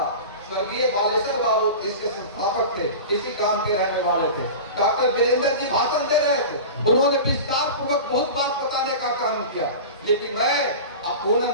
स्वर्गीय बालेश्वर बाबू इसके संस्थापक थे, इसी गांव के रहने वाले थे, डॉक्टर वीरेंद्र जी भाषण दे रहे थे, उन्होंने विस्तार पूर्वक बहुत बात बताने का काम किया। लेकिन मैं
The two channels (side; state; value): both; inverted; correlation -0.31